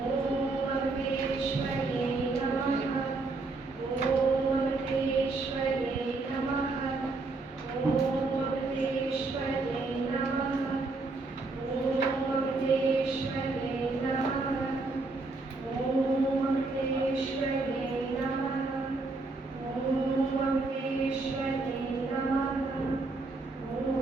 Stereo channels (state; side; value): quieter; left; 3.5 dB